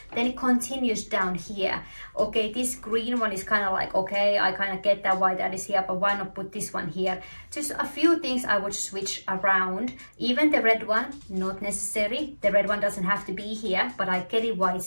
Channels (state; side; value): inverted; both; correlation -1.00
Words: Then it continues down here. Okay, this green one is kind of like, okay, I kind of get that why that is here, but why not put this one here? Just a few things I would switch around. Even the red one, not necessary. The red one doesn't have to be here, but I get it why